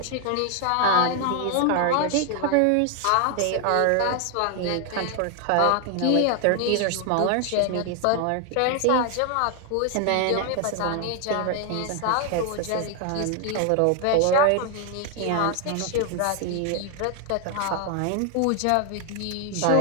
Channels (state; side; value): different; both; correlation 0.00